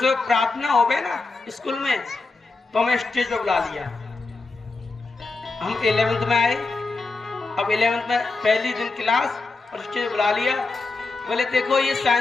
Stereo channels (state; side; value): quieter; right; 3.7 dB